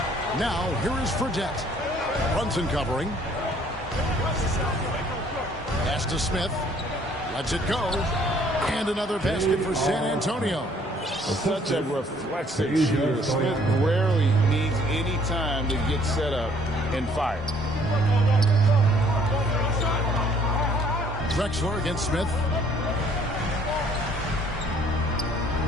Now, here is Fredette. Brunson covering. Pass to Smith. Lets it go. And another basket for San Antonio. Such a reflexive shooter. Smith rarely needs any time to get set up and fire. Drexler against Smith.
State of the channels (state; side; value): normal; both; correlation 0.60